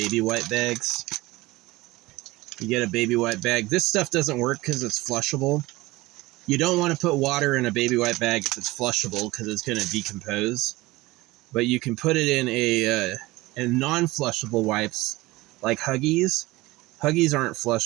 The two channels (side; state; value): left; quieter; 20.0 dB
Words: white bags. You get a baby white bag. This stuff doesn't work because it's flushable. You don't want to put water in a baby white bag if it's flushable because it's going to decompose. But you can put it in a non-flushable wipes like Huggies. Huggies aren't